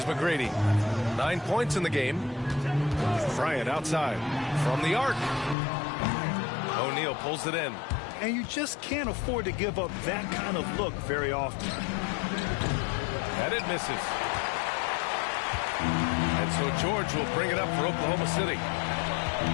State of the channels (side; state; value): right; drops out; at 5.6 s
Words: McGrady. 9 points in the game. Bryant outside from the arc. O'Neal pulls it in. And you just can't afford to give up that kind of look very often. And it misses. And so George will bring it up for Oklahoma City.